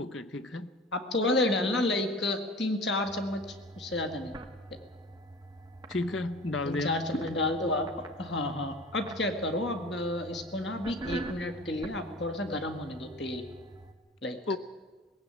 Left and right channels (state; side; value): normal; both; correlation 0.40